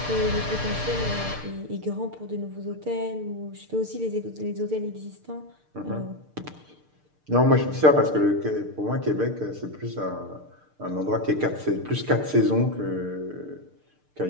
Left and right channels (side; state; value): left; late; 6.6 ms